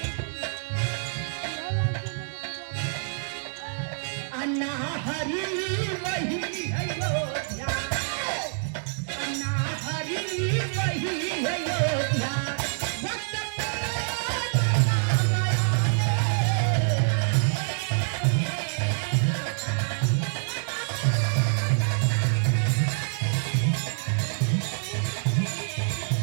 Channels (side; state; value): left; silent; digital silence